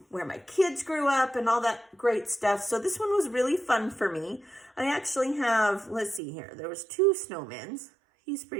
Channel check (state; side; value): drops out; left; at 6.2 s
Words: where my kids grew up and all that great stuff. So this one was really fun for me. I actually have, let's see here, there was 2 snowmen. He's